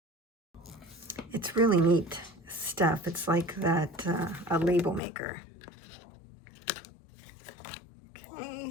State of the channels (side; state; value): right; drops out; at 5.0 s